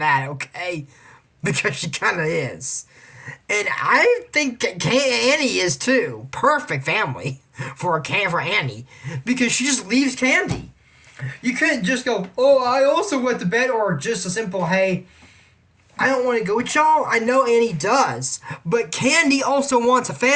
okay? Because she kind of is. And I think Annie is too. Perfect family for Annie. Because she just leaves Candy. You couldn't just go, oh, I also went to bed, or just a simple, hey, I don't want to go with y'all. I know Annie does. But Candy also wants a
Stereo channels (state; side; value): identical; both; correlation 1.00